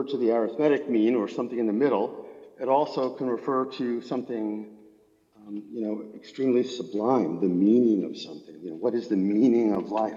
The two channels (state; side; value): identical; both; correlation 1.00